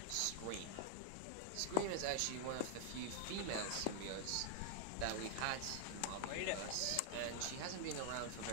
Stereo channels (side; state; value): both; different; correlation 0.00